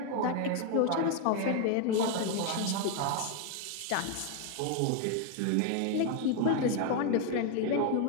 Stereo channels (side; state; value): both; different; correlation 0.01